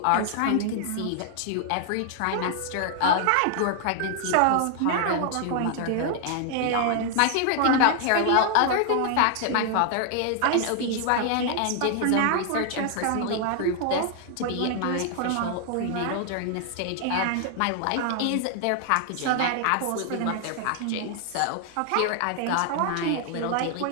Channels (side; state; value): both; different; correlation 0.00